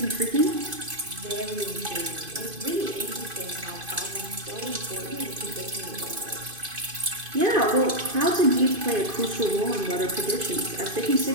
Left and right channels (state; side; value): late; left; 2.5 ms